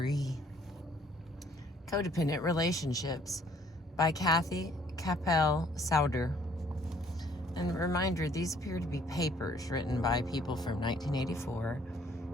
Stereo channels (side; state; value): both; normal; correlation 0.61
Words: Codependent Relationships by Capell-Sowder. And a reminder, these appear to be papers written by people from 1984